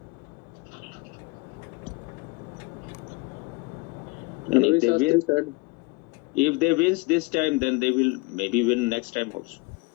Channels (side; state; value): right; quieter; 26.6 dB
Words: they Shastri win, said. if they wins this time, then they will maybe win next time also.